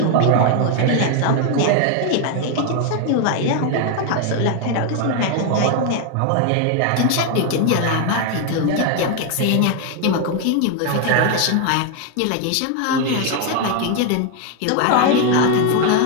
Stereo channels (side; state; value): both; different; correlation 0.01